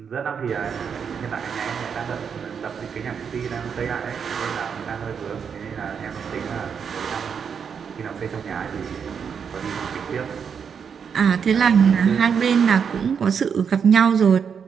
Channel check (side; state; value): left; quieter; 6.9 dB